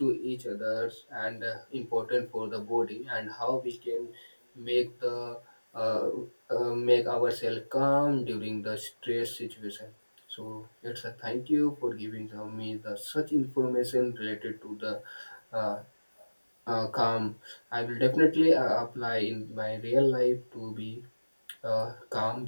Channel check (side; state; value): both; inverted; correlation -1.00